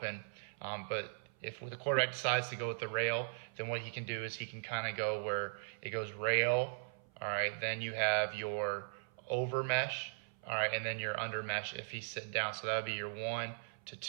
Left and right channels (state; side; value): silent; left; 52 dB below the other